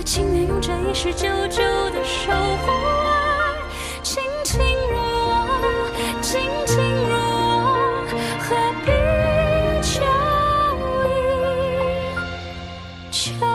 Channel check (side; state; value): both; identical; correlation 1.00